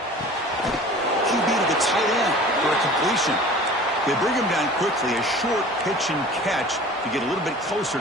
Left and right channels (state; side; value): normal; both; correlation 0.43